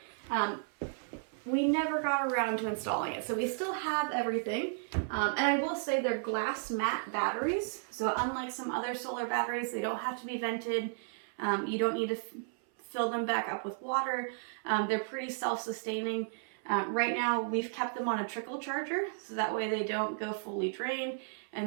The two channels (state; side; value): silent; left; 55 dB below the other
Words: We never got around to installing it, so we still have everything. And I will say they're glass matte batteries, so unlike some other solar batteries, they don't have to be vented. You don't need to fill them back up with water. They're pretty self-sustaining. Right now, we've kept them on a trickle charger, so that way they don't go fully drained.